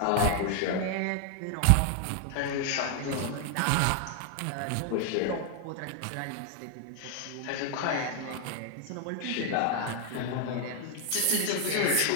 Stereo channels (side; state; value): both; different; correlation 0.00